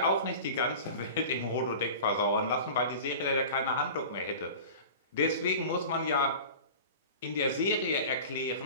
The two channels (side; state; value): both; inverted; correlation -0.36